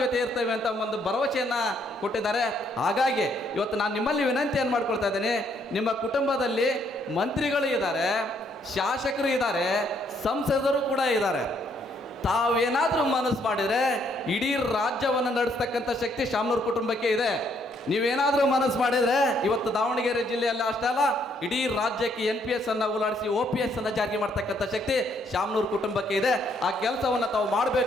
ಜೊತೆ ಇರ್ತೇವೆ ಅಂತ ಒಂದು ಭರವಸೆಯನ್ನು ಕೊಟ್ಟಿದ್ದಾರೆ. ಹಾಗಾಗಿ ಇವತ್ತು ನಾನು ನಿಮ್ಮಲ್ಲಿ ವಿನಂತಿಯನ್ನು ಮಾಡ್ಕೊಳ್ತಾ ಇದ್ದೇನೆ, ನಿಮ್ಮ ಕುಟುಂಬದಲ್ಲಿ ಮಂತ್ರಿಗಳು ಇದ್ದಾರೆ, ಶಾಸಕರು ಇದ್ದಾರೆ, ಸಂಸದರು ಕೂಡ ಇದ್ದಾರೆ. ತಾವೇನಾದರೂ ಮನಸ್ಸು ಮಾಡಿದರೆ ಇಡೀ ರಾಜ್ಯವನ್ನು ನಡೆಸ್ತಕ್ಕಂಥ ಶಕ್ತಿ ಶಾಮನೂರ್ ಕುಟುಂಬಕ್ಕೆ ಇದೆ. ನೀವೇನಾದರೂ ಮನಸ್ಸು ಮಾಡಿದರೆ ಇವತ್ತು ದಾವಣಗೆರೆ ಜಿಲ್ಲೆಯಲ್ಲಿ ಅಷ್ಟೇ ಅಲ್ಲ, ಇಡೀ ರಾಜ್ಯಕ್ಕೆ NPS ಅನ್ನು ಉಲಾಡಿಸಿ OPS ಅನ್ನು ಜಾರಿ ಮಾಡ್ತಕ್ಕಂಥ ಶಕ್ತಿ ಶಾಮನೂರ್ ಕುಟುಂಬಕ್ಕೆ ಇದೆ. ಆ ಕೆಲಸವನ್ನು ತಾವು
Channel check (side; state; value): both; normal; correlation 0.70